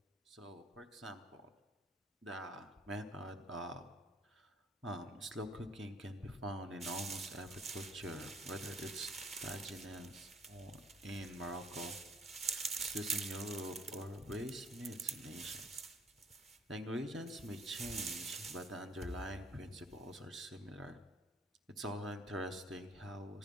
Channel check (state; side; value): normal; both; correlation 0.59